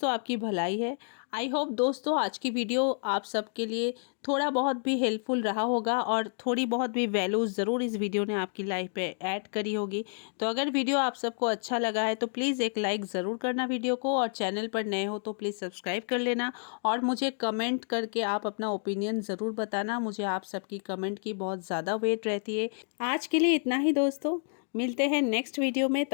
आपकी भलाई है। आई होप दोस्तों आज की वीडियो आप सबके लिए थोड़ा बहुत भी हेल्पफुल रहा होगा और थोड़ी बहुत भी वैल्यू ज़रूर इस वीडियो ने आपकी लाइफ पे ऐड करी होगी। तो अगर वीडियो आप सबको अच्छा लगा है तो प्लीज़ एक लाइक ज़रूर करना वीडियो को, और चैनल पर नए हो तो प्लीज़ सब्सक्राइब कर लेना और मुझे कमेंट करके आप अपना ओपिनियन ज़रूर बताना। मुझे आप सबकी कमेंट की बहुत ज़्यादा वेट रहती है। आज के लिए इतना ही दोस्तों, मिलते हैं नेक्स्ट वीडियो में।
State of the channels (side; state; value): right; silent; 58 dB below the other